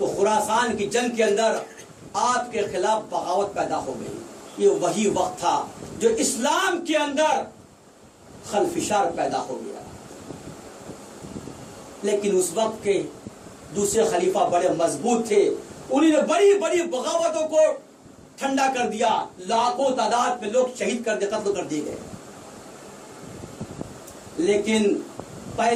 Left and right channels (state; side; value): identical; both; correlation 1.00